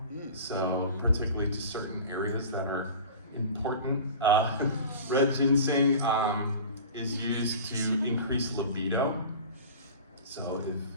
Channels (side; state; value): both; inverted; correlation -0.37